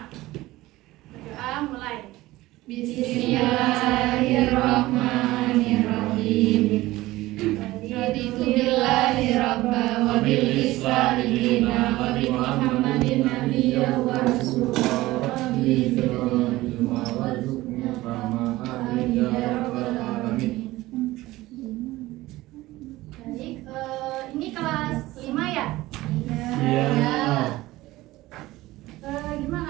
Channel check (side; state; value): left; quieter; 18.0 dB